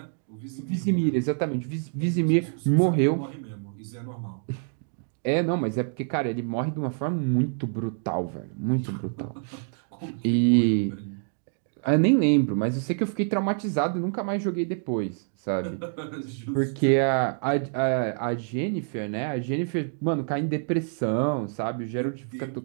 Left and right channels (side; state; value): left; silent; digital silence